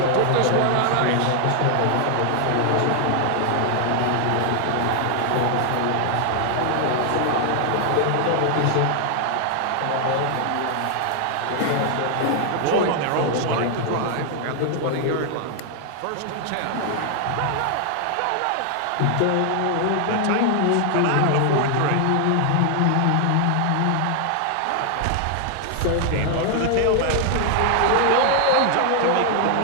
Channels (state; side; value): different; both; correlation 0.00